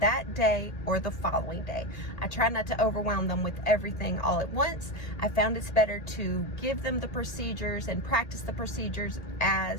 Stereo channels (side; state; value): right; late; 1.8 ms